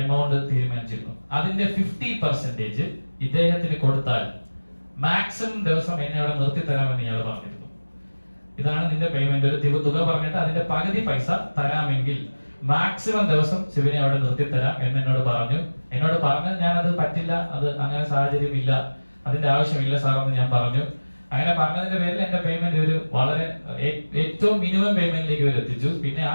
എമൗണ്ട് തീരുമാനിച്ചിരുന്നു. അതിന്റെ 50% ഇദ്ദേഹത്തിന് കൊടുത്താൽ മാക്സിമം ദിവസം എന്നെ അവിടെ നിർത്തി തരാമെന്ന് ഇയാൾ പറഞ്ഞിരുന്നു. ഇതാണ് നിന്റെ പേയ്മെന്റ്, ഒരു തുക പറഞ്ഞിട്ട് അതിന്റെ പകുതി പൈസ തരാമെങ്കിൽ മാക്സിമം ദിവസം ശിവനെ അവിടെ നിർത്തി തരാം എന്ന് എന്നോട് പറഞ്ഞു. ഞാനത് പറ്റില്ല, അത് അങ്ങനെ സാഹചര്യം ഇല്ല, അതിന്റെ ആവശ്യമില്ല സാർ എന്ന് ഞാൻ പറഞ്ഞു. അങ്ങനെ പറഞ്ഞതിന്റെ പേരിൽ എന്റെ പേയ്മെന്റ് ഒരു വളരെ ഏറ്റവും മിനിമം പേയ്മെന്റിലേക്ക് ഇവർ എത്തിച്ചു. പിന്നെ ആ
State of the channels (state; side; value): inverted; both; correlation -1.00